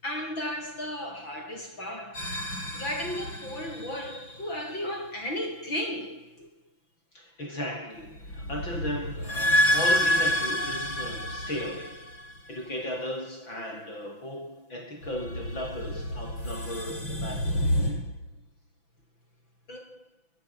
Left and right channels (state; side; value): late; right; 6.0 ms